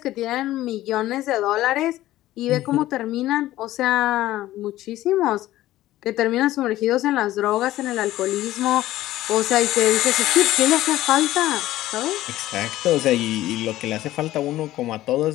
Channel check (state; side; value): quieter; right; 15.2 dB